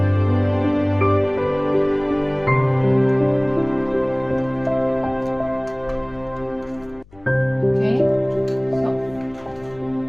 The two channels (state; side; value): noise; left; hum, 26 dB below the sound